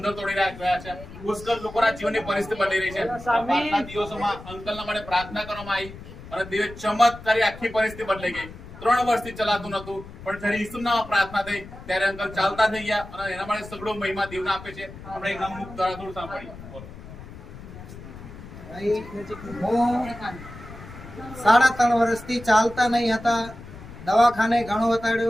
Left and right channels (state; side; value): noise; left; rumble, 15 dB below the sound